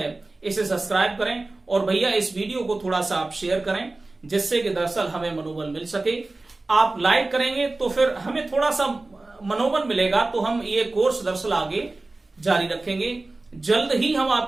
इसे सब्सक्राइब करें और भैया इस वीडियो को थोड़ा सा आप शेयर करें, जिससे कि दरअसल हमें मनोबल मिल सके। आप लाइक करेंगे तो फिर हमें थोड़ा सा मनोबल मिलेगा, तो हम ये कोर्स दरअसल आगे जारी रखेंगे। जल्द ही हम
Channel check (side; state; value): left; quieter; 3.1 dB